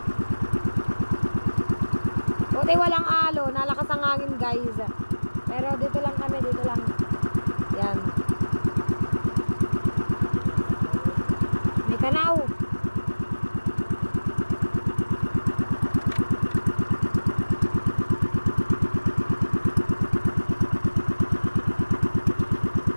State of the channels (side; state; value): both; inverted; correlation -1.00